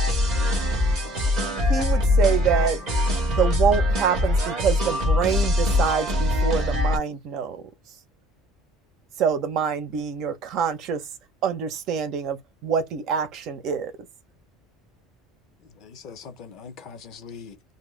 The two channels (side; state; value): both; normal; correlation 0.55